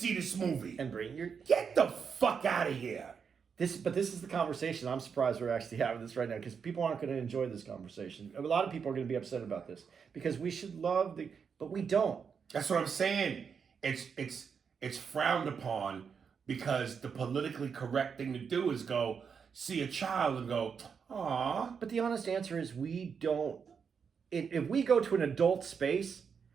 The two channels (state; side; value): quieter; left; 6.4 dB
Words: this movie. And bring your... Get the fuck out of here. But this is the conversation. I'm surprised we're actually having this right now because people aren't going to enjoy this conversation. A lot of people are going to be upset about this because we should love but we don't. That's what I'm saying. It's frowned upon because the politically correct thing to do is go see a child and go, aw. But the honest answer is we don't. If we go to an adult space,